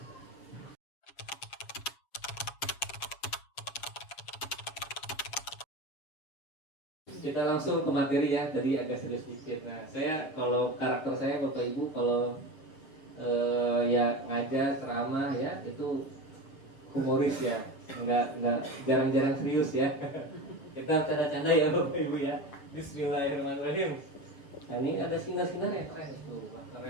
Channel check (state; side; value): late; right; 7.2 ms